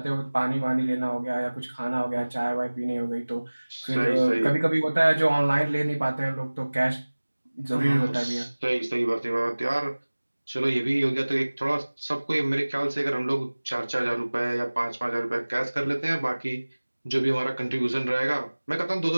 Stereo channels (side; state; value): both; inverted; correlation -1.00